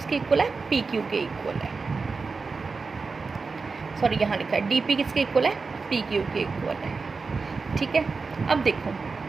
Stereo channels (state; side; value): quieter; left; 4.4 dB